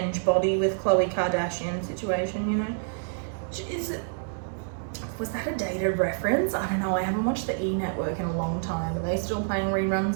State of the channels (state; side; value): silent; left; digital silence